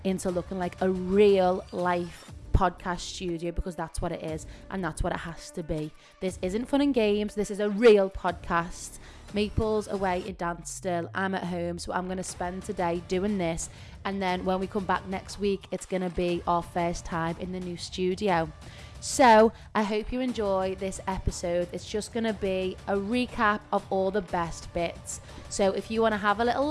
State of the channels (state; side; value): identical; both; correlation 1.00